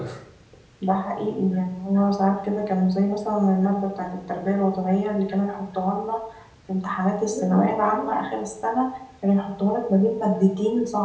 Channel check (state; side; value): identical; both; correlation 1.00